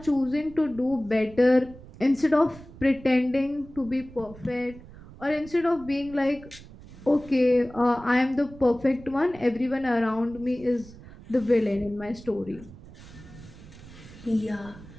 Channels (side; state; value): right; noise; rumble, 18 dB below the sound